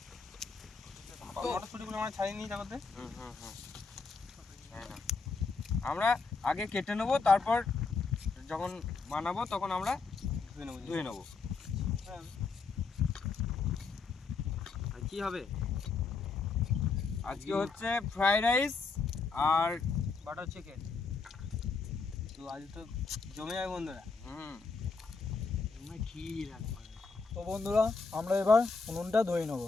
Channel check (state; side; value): quieter; right; 4.5 dB